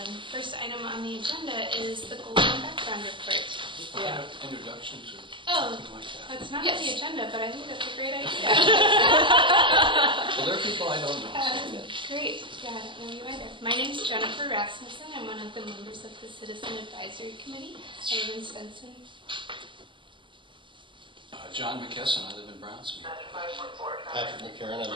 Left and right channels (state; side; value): late; left; 0.24 ms